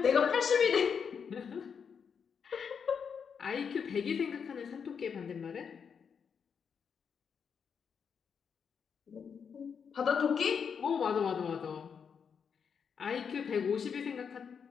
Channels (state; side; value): quieter; right; 6.6 dB